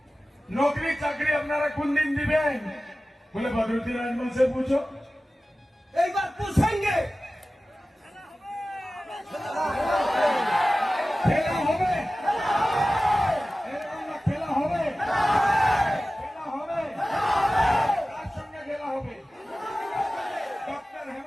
नौकरी चाकरी अपनारा कुन दिन दिबेन बोले बदरुद्दीन आजमल से पूछो एक बार पूछेंगे खेला होबे खेला होबे কার সঙ্গে খেলা হবে ডক্টর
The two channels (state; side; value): normal; both; correlation 0.96